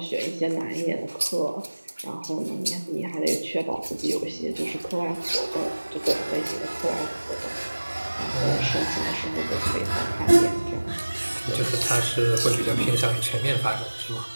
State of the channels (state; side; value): inverted; both; correlation -1.00